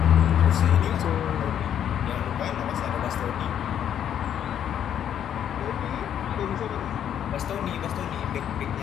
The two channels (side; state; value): right; quieter; 9.6 dB